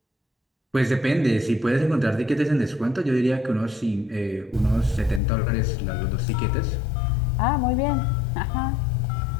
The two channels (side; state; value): right; drops out; at 5.2 s